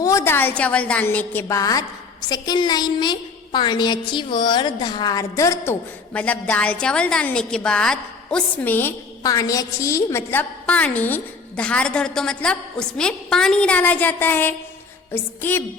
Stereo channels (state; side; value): quieter; right; 4.6 dB